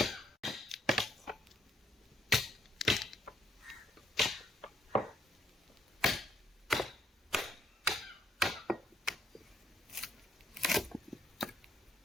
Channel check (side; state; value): both; normal; correlation 0.70